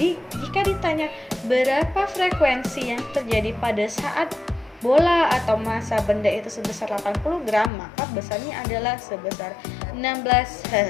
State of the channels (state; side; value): drops out; right; at 7.7 s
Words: jika ditanya berapa frekuensi yang terjadi pada saat bola atau massa benda itu sebesar 80 gram, maka besarnya adalah sebesar 16